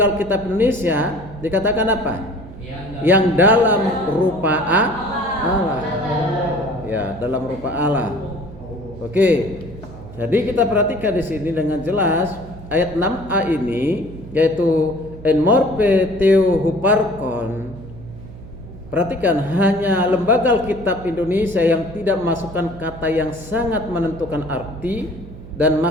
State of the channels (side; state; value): right; noise; hum, 16 dB below the sound